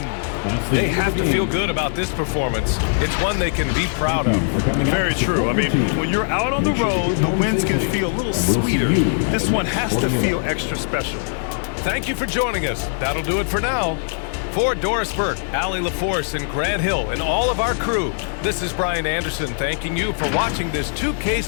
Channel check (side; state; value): right; silent; digital silence